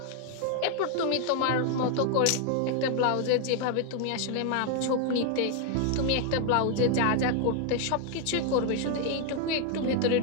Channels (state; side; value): different; both; correlation 0.00